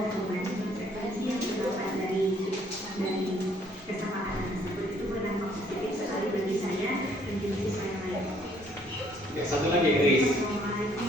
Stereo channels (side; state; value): both; normal; correlation 0.63